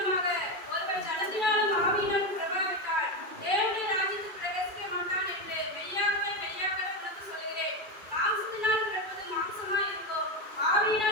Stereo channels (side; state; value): left; late; 2.6 ms